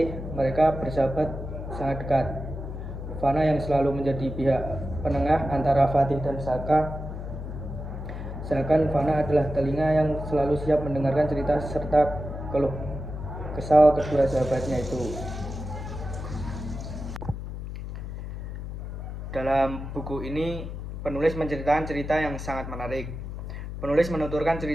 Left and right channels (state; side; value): noise; left; hum, 7 dB below the sound